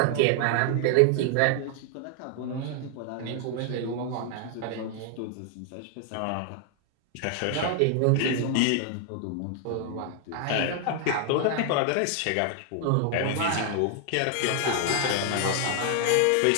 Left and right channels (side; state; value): both; different; correlation 0.00